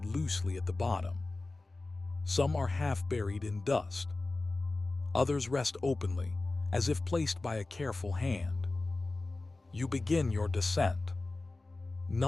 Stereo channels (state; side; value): quieter; right; 3.2 dB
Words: loosely at the bottom. Some are half buried in dust. Others rest openly, as if placed by a careful hand. You begin your descent.